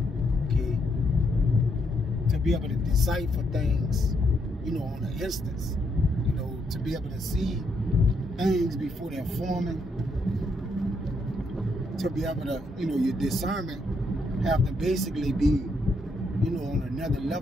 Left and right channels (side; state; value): both; normal; correlation 0.76